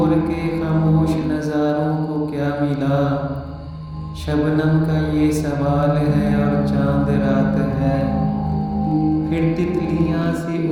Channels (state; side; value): identical; both; correlation 1.00